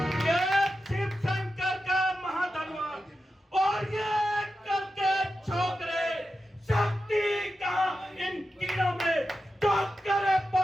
ये शिव शंकर का महाधनवान और ये करके छोकरे शक्ति कहाँ इन कीड़ों में तो करे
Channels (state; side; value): normal; both; correlation 0.91